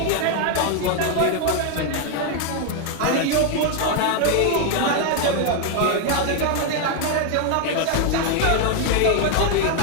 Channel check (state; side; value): different; both; correlation 0.01